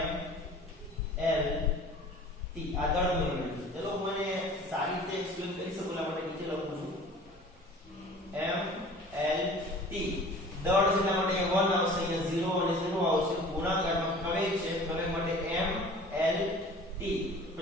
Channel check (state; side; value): normal; both; correlation 0.45